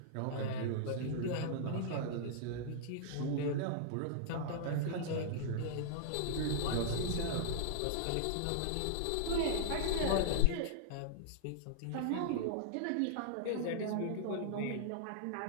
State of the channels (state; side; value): different; both; correlation -0.01